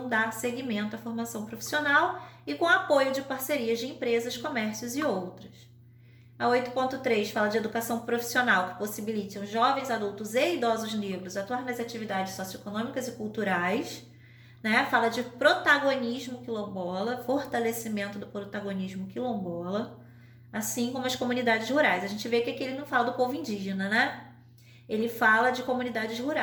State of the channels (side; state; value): both; identical; correlation 1.00